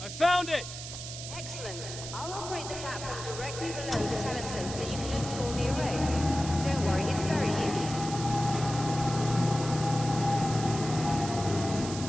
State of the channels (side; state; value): right; noise; hiss, 9 dB below the sound